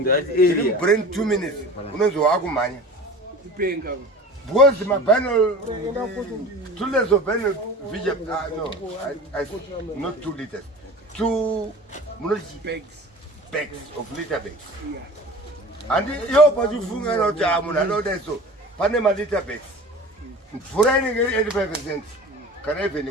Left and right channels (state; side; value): normal; both; correlation 0.38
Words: You bring 2 minutes. Because my binary 2 liters of binary vision. No, not 2 liters. 2 bags of liter bags. And you but you funga no jamu, I know that so. Panama liter bags. For any 85%, can even